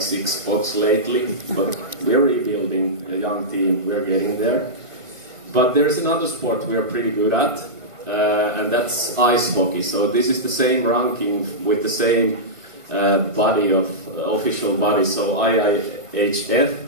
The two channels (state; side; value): late; left; 1.5 ms